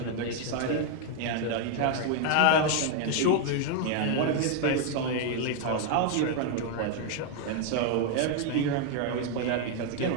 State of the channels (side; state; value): both; different; correlation 0.01